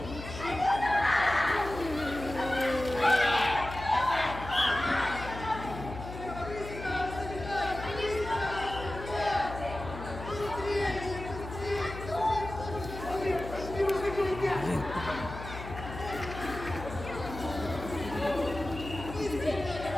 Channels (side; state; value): left; noise; hum, 10 dB below the sound